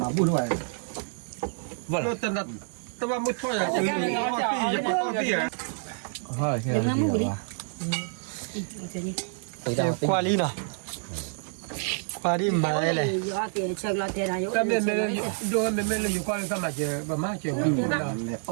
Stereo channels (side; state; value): left; silent; 60 dB below the other